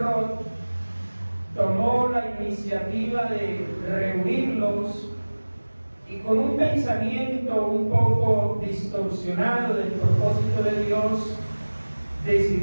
tomó la iniciativa de reunirlos, y con un pensamiento un poco distorsionado del propósito de Dios,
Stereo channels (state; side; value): inverted; both; correlation -1.00